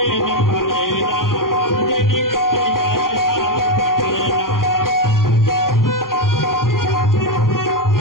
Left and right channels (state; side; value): late; right; 0.91 ms